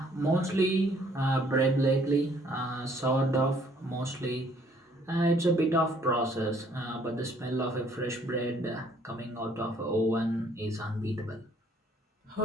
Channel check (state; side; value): normal; both; correlation 0.62